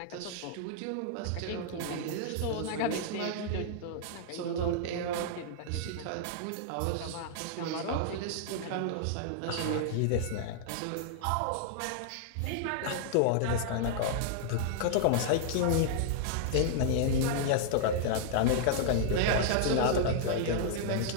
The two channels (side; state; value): both; different; correlation -0.01